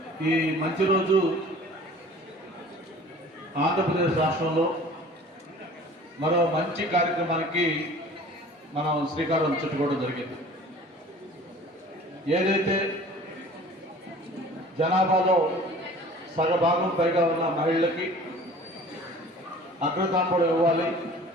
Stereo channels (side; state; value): both; normal; correlation 0.46